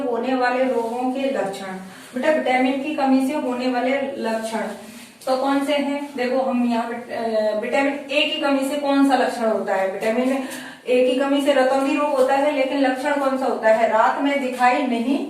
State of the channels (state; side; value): identical; both; correlation 1.00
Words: वाले रोगों के लक्षण बेटा, विटामिन की कमी से होने वाले लक्षण तो कौन से हैं? देखो हम यहाँ विटामिन ए की कमी से कौन सा लक्षण होता है? विटामिन ए की कमी से रतौंधी रोग होता है, लेकिन लक्षण कौन सा होता है? रात में दिखाई नहीं